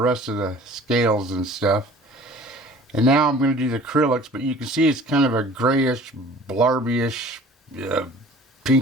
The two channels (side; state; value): both; normal; correlation 0.47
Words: of the scales and stuff. And now I'm going to do the acrylics, but you can see it's kind of a grayish, blarbyish,